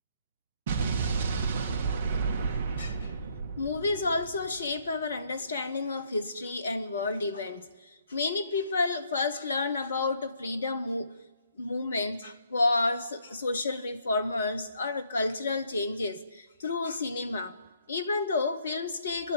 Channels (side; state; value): both; inverted; correlation -0.69